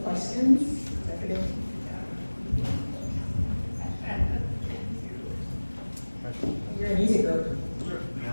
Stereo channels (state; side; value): inverted; both; correlation -1.00